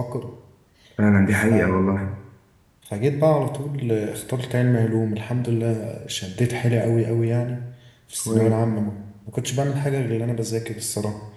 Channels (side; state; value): both; identical; correlation 1.00